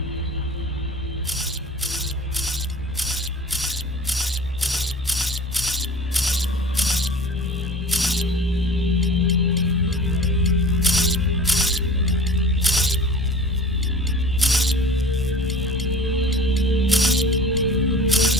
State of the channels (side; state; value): both; normal; correlation 0.41